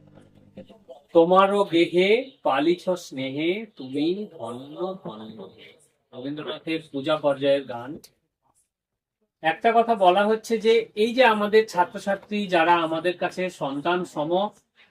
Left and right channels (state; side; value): identical; both; correlation 1.00